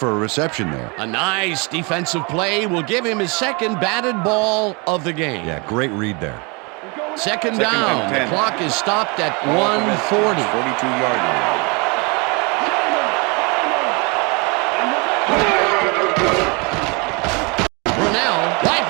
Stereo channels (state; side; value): quieter; left; 30.2 dB